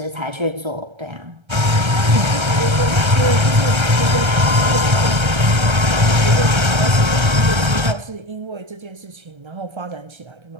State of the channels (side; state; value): left; late; 1.3 ms